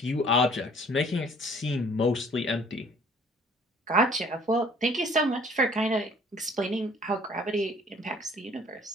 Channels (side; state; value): both; normal; correlation 0.55